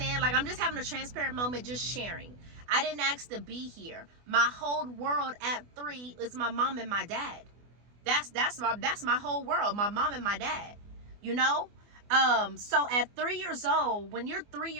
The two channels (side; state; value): left; late; 24 ms